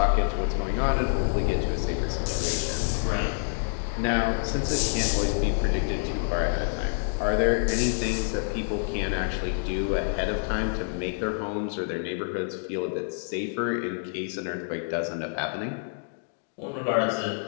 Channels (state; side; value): silent; right; digital silence